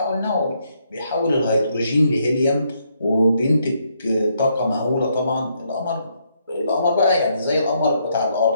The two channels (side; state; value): both; inverted; correlation -0.74